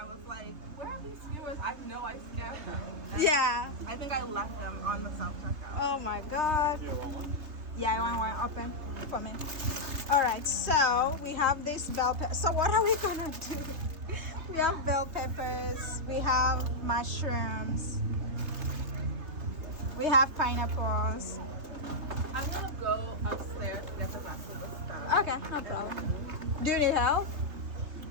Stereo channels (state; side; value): late; left; 3.5 ms